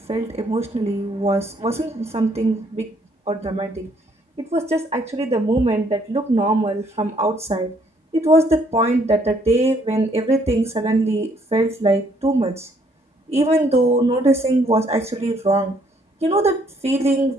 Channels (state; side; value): normal; both; correlation 0.67